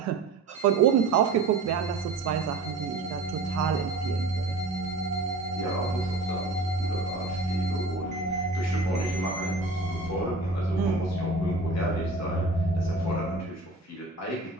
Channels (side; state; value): left; quieter; 3.4 dB